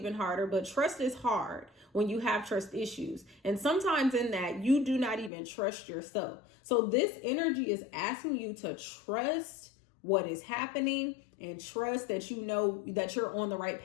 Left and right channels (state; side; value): drops out; right; at 5.3 s